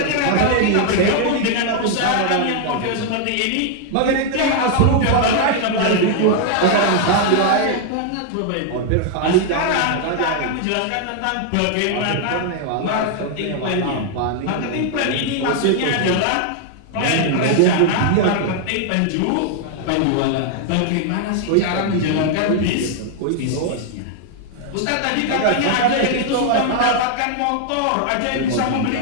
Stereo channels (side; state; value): both; different; correlation 0.00